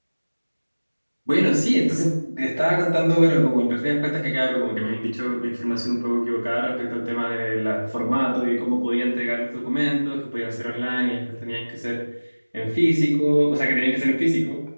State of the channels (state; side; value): inverted; both; correlation -1.00